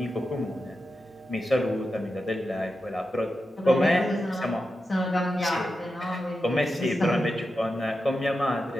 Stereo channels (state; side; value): normal; both; correlation 0.90